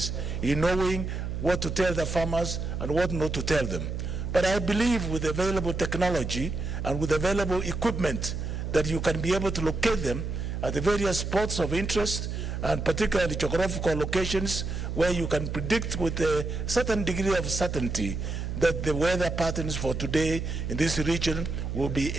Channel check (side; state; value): right; noise; hum, 4 dB below the sound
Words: in knowing what to tell the farmers and what not to tell them. But I believe with available technology and with available equipment that you can be able to locate them at the various spots of interest, and particularly geographical locations where you can predict with a certain degree of certainty that the weather patterns for today in this region will be